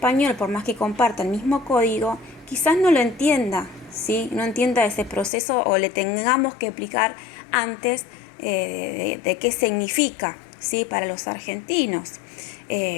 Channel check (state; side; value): drops out; right; at 5.3 s